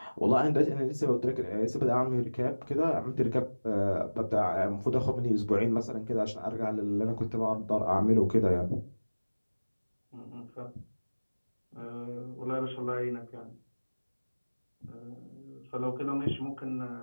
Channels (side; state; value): both; inverted; correlation -1.00